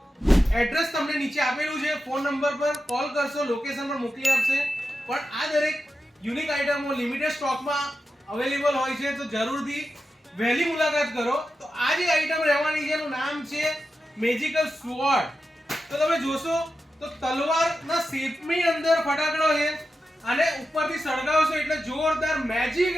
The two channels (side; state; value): both; normal; correlation 0.90